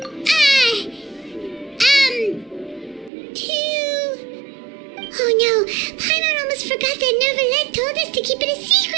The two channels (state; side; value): drops out; left; at 3.1 s